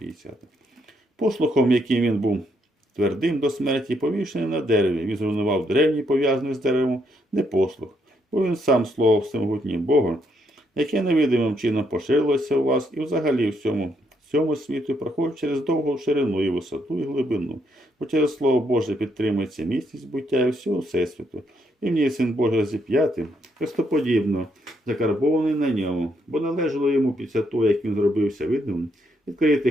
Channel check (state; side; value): normal; both; correlation 0.75